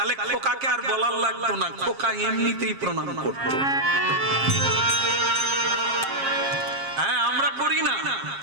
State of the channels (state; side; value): late; left; 7.4 ms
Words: খোকাকে আর বলার লাগতো না, খোকা এমনিতেই প্রণাম করতো। হ্যাঁ, আমরা করি না,